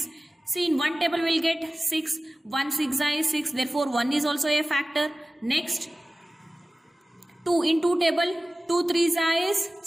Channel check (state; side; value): normal; both; correlation 0.97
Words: See, in one table we will get 6. 1 6 is 6. Therefore, 1 is also a factor. Next, 2 in 2 table. 2 3s is